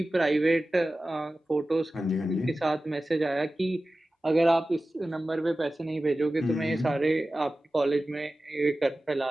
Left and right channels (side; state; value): both; normal; correlation 0.95